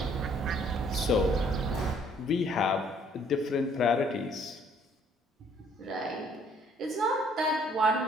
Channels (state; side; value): normal; both; correlation 0.61